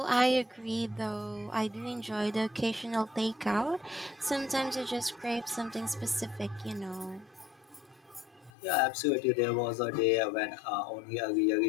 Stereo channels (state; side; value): drops out; right; at 8.5 s